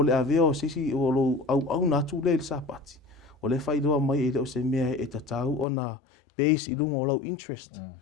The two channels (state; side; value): drops out; right; at 5.7 s